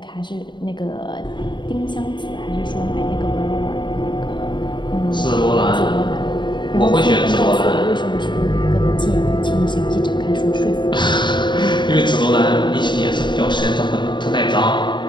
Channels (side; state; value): right; late; 0.22 ms